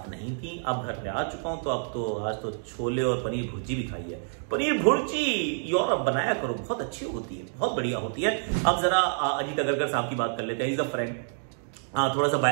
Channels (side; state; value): left; silent; digital silence